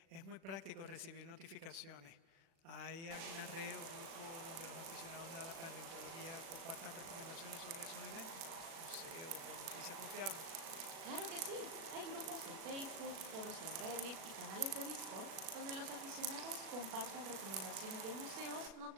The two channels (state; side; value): late; left; 36 ms